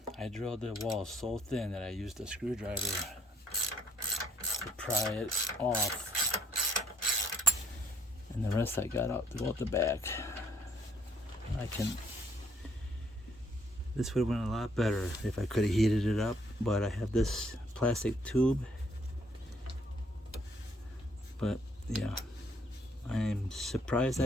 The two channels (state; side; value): normal; both; correlation 0.67